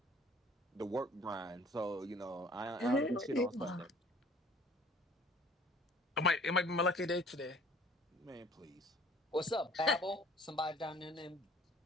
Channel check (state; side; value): normal; both; correlation 0.53